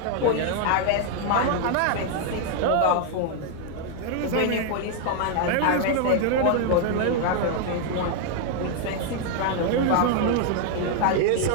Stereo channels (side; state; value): both; different; correlation 0.00